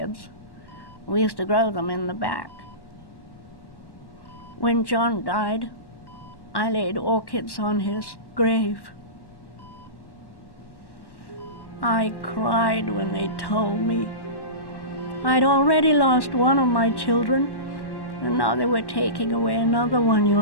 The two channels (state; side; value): late; right; 1.1 ms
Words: We used to grow them in the back. When John died, I laid orchids on his grave. I cried when they told me. I'd already lost one of my children, and now they were taking away another one, you